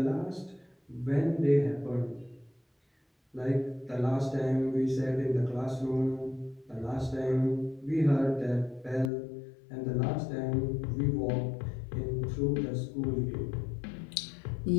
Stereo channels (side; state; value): right; drops out; at 9.1 s